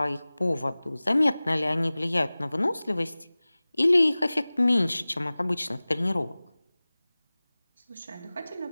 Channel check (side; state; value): both; inverted; correlation -0.99